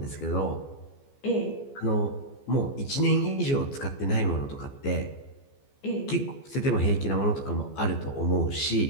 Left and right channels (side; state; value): right; late; 14 ms